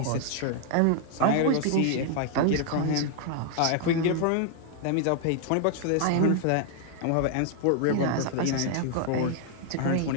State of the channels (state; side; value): different; both; correlation 0.00